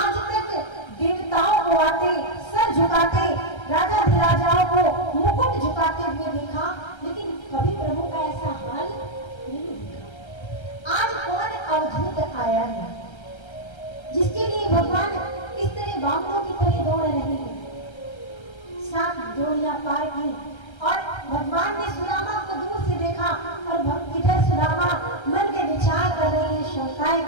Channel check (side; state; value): right; late; 1.3 ms